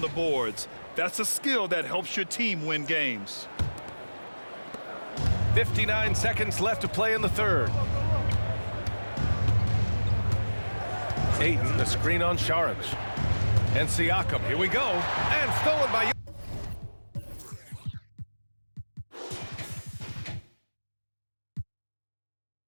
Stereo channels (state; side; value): inverted; both; correlation -1.00